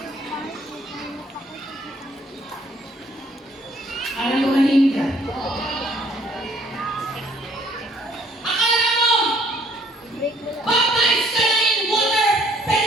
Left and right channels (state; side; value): normal; both; correlation 0.62